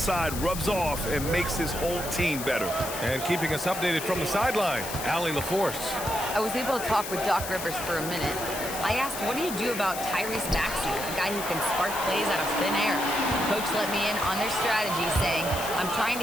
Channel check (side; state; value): left; noise; hiss, 8 dB below the sound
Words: rubs off and makes his whole team better. And keeping us updated from the sideline, Allie LaForce. I was able to talk with Doc Rivers for a minute. I asked, what do you do about Tyrese Maxey, a guy who can spark plays out of thin air? Coach let me in on their strategy, saying, I'm trying